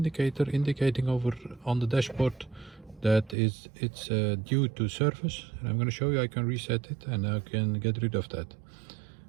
indicating over on the dashboard that it's due to service, and I'm going to show you how you can reset it and I can get rid of that.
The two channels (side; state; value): left; drops out; at 3.4 s